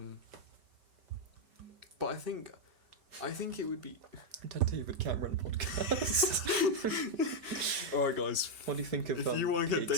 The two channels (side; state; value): left; late; 5.2 ms